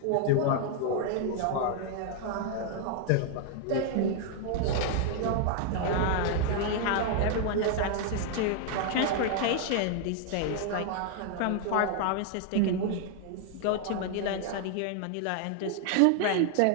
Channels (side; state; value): both; different; correlation 0.00